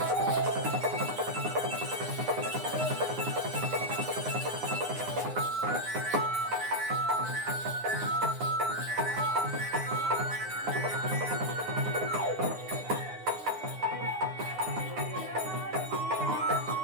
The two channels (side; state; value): left; late; 9.7 ms